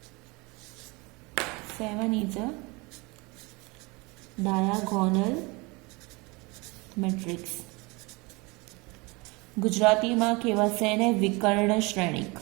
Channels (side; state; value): left; quieter; 26.3 dB